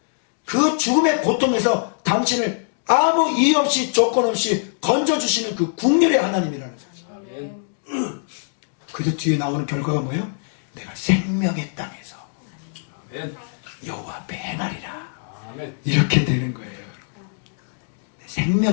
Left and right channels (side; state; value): right; silent; digital silence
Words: 그 죽음의 고통에서 당신을 아무 이유 없이 조건 없이 건져주시는 그 국률의 하나님이라는 사실. 아멘. 그래서 뒤에 나오는 결과가 뭐예요? 내가 생명의 땅에서 아멘. 여호와 앞에 행하리라. 아멘. 이렇게 되는 거예요.